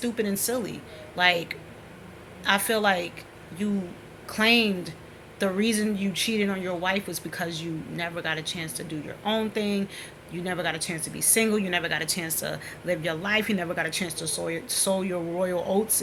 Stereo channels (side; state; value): both; identical; correlation 1.00